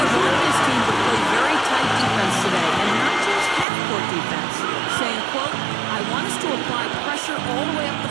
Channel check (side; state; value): left; drops out; at 3.7 s